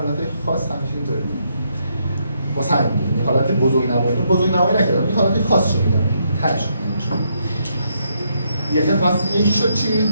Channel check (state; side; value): inverted; both; correlation -0.76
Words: خاص همیشه اینطوریه. واسه همین حالت بزرگنمایی نکردم. این حالت خاص رو میگم. تاش. یکی شد چی؟